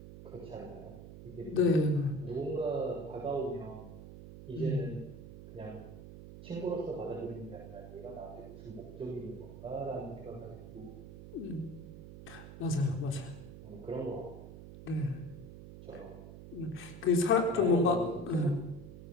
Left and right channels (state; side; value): noise; right; hum, 13 dB below the sound